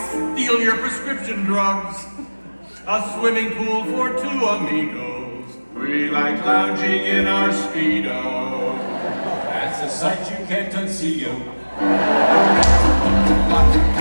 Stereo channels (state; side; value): inverted; both; correlation -1.00